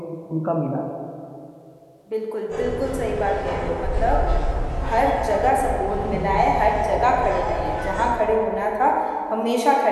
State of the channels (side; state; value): both; identical; correlation 1.00